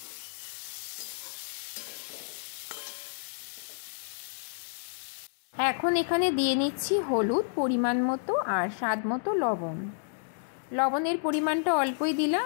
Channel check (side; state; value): right; silent; 58 dB below the other